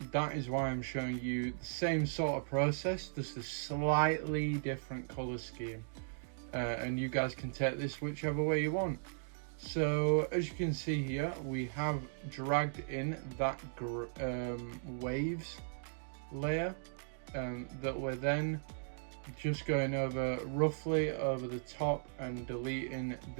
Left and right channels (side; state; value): left; silent; digital silence